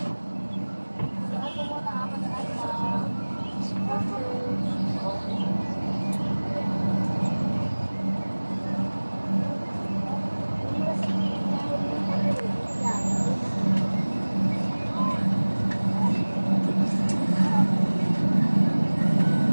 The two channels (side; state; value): both; inverted; correlation -1.00